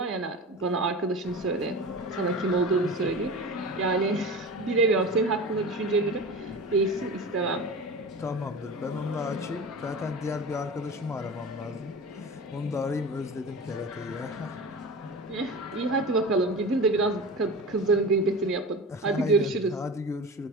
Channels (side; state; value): both; normal; correlation 0.31